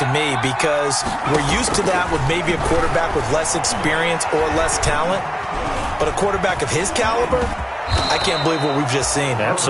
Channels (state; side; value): identical; both; correlation 1.00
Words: me because we're used to that with maybe a quarterback with less experience or less talent. But a quarterback of his caliber, I can't believe what we've just seen.